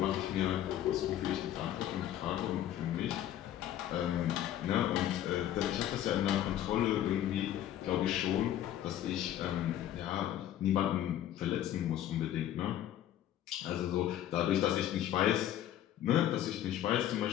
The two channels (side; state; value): right; quieter; 11.9 dB